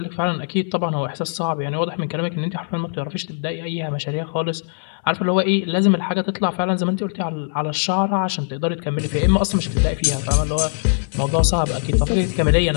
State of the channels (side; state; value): right; silent; digital silence